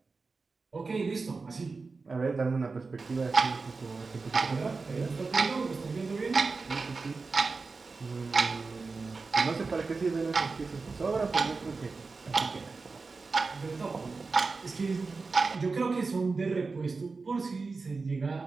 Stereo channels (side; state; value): left; quieter; 4.2 dB